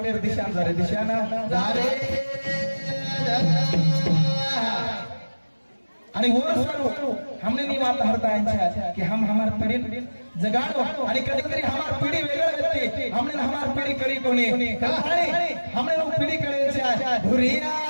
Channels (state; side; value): inverted; both; correlation -1.00